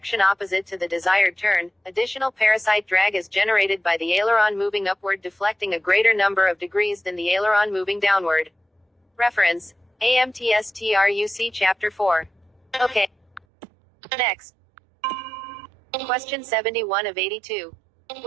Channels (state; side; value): drops out; left; at 13.4 s